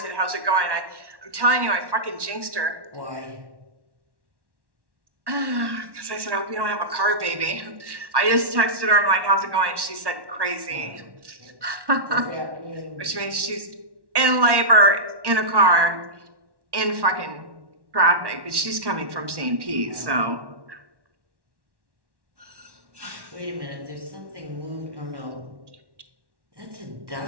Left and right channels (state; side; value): late; left; 1.1 ms